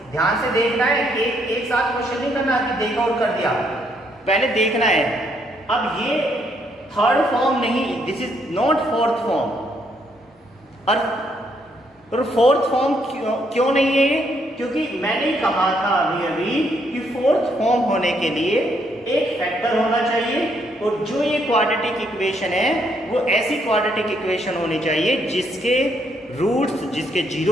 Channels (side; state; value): both; normal; correlation 0.72